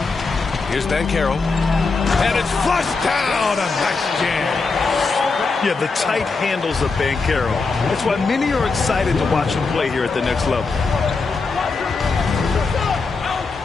Here's Banchero. And it's flushed down. A nice jam. Yeah, the tight handles of Banchero. That's why many are excited to watch him play here at the next level.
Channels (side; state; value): right; quieter; 4.2 dB